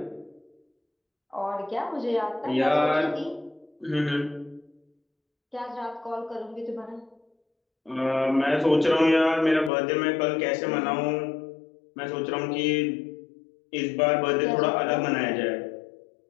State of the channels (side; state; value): right; drops out; at 9.7 s